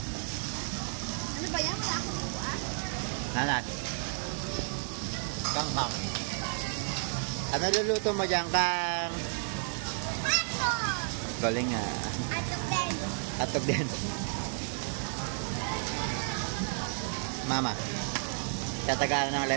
Ano ba yan? Wala akong buwan. Nanas. Kang. Ano luluto mo dyan, Kang? Ato! Galing nga. Ato din. Atog din. Mama. Tatagalan ng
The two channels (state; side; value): silent; left; 56 dB below the other